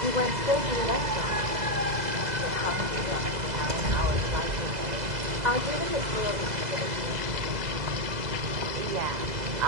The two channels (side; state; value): left; late; 2.0 ms